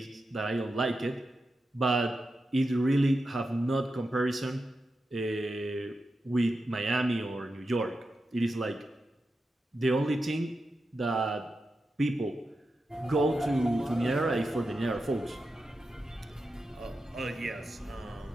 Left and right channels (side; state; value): both; normal; correlation 0.89